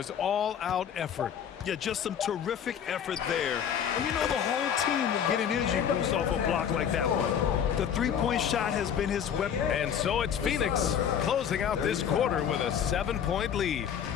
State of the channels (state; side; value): quieter; right; 8.4 dB